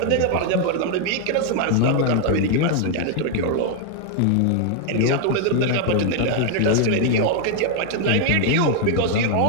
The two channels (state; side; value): different; both; correlation 0.00